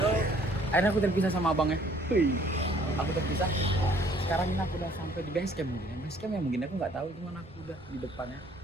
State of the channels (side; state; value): both; normal; correlation 0.59